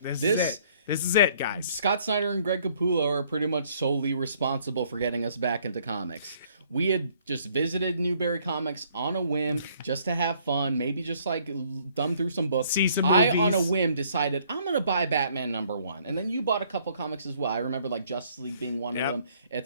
is it, guys. Scott Snyder and Greg Capullo are pretty much solely responsible for getting us back into comics. We had just visited Newberry Comics on a whim, just to have fun, maybe just like thumb through some books. See some movies. I, on a whim, decided I'm going to buy Batman #1. And then you bought a couple comics as well. I remember like Justice League being one of them,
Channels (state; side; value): inverted; both; correlation -0.62